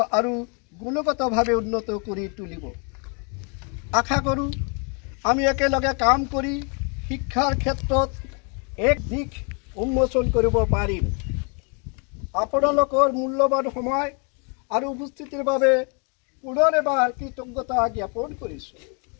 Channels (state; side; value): quieter; right; 36.3 dB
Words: আৰু গুণগতভাৱে উন্নত কৰি তুলিব। আশা কৰোঁ আমি একেলগে কাম কৰি শিক্ষাৰ ক্ষেত্ৰত এক দিশ উন্মোচন কৰিব পাৰিম। আপোনালোকৰ মূল্যৱান সময় আৰু উপস্থিতিৰ বাবে পুনৰ এবাৰ কৃতজ্ঞতা জ্ঞাপন কৰিছোঁ।